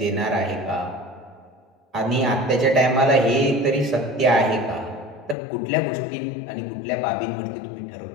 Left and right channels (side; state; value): right; drops out; at 5.4 s